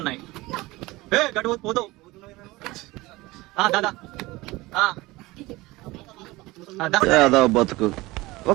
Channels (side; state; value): left; quieter; 20.6 dB